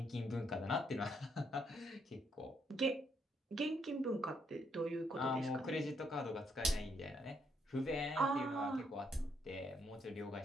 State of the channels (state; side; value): normal; both; correlation 0.74